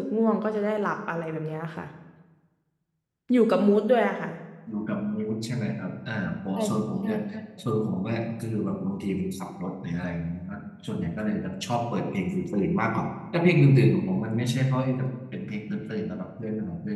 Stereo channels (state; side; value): identical; both; correlation 1.00